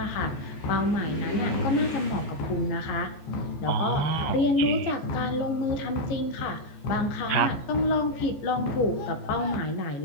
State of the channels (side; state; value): right; late; 14 ms